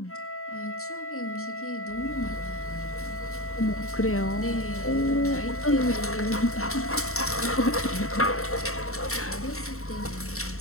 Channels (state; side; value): late; right; 0.63 ms